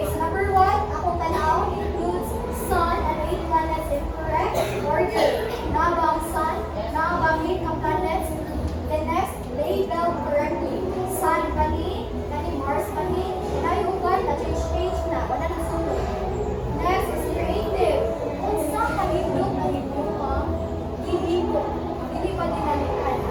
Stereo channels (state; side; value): identical; both; correlation 1.00